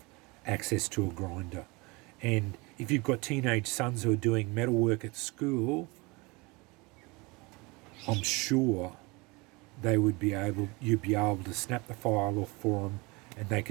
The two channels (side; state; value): left; quieter; 25.9 dB